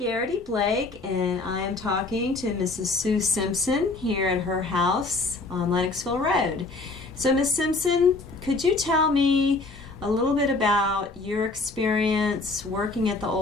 and I am talking to Mrs. Sue Simpson here at her house on Lennoxville Road. So, Miss Simpson, could you tell me a little bit about your experience working at the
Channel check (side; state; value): right; quieter; 3.4 dB